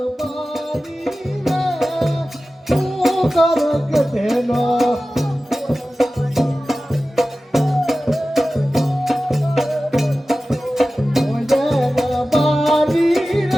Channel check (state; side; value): normal; both; correlation 0.95